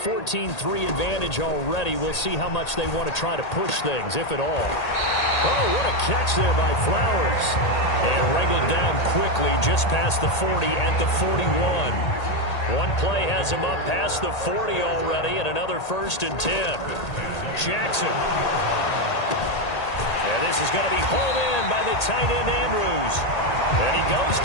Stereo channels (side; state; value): right; late; 1.8 ms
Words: advantage already, we'll see how much they want to try to push things, if at all. Oh, what a catch there by Flowers. And wrangled down quickly just past the 40 at the 41. One play has him up past the 40 already, and another 1st and 10. Jackson. And this is going to be hauled in by the tight end Andrews. And he goes